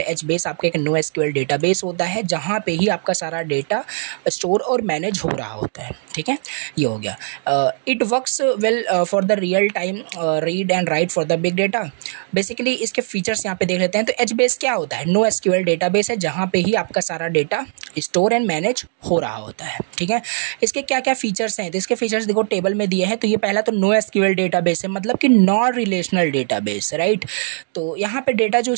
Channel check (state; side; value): silent; left; 58 dB below the other